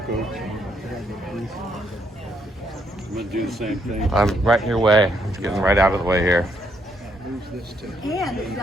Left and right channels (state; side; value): normal; both; correlation 0.73